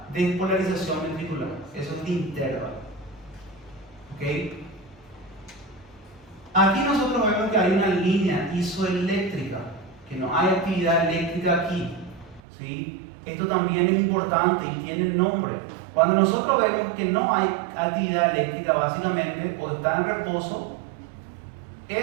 despolarización ventricular. Eso es el intervalo. ¿Ok? Aquí nosotros vemos que hay una línea isoeléctrica, que no hay actividad eléctrica aquí. ¿Sí? Esto también es importante y tiene nombre. Cuando nosotros vemos que no hay actividad eléctrica, básicamente, o está en reposo,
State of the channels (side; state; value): left; drops out; at 12.4 s